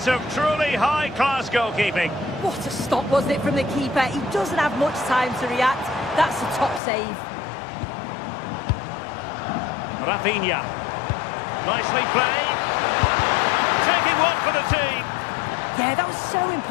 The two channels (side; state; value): right; drops out; at 6.8 s